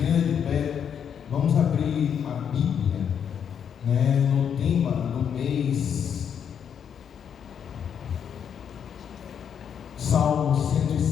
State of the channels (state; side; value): quieter; right; 8.0 dB